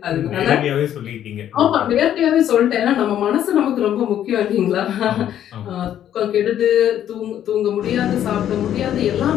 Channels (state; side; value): quieter; right; 10.7 dB